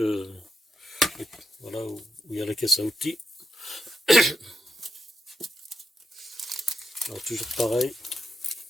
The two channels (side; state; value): both; normal; correlation 0.83